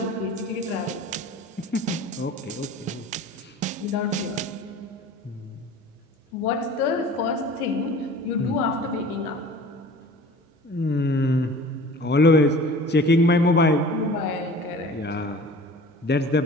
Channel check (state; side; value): normal; both; correlation 0.42